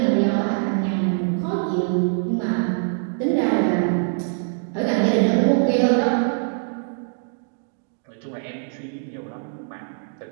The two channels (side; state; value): left; silent; 63 dB below the other